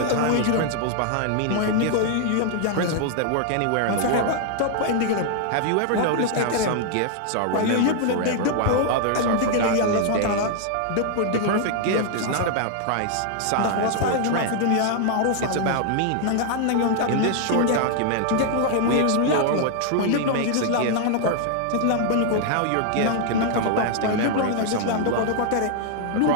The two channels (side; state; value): both; different; correlation 0.00